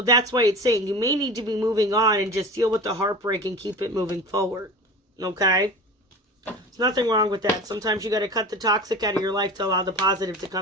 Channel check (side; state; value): both; normal; correlation 0.34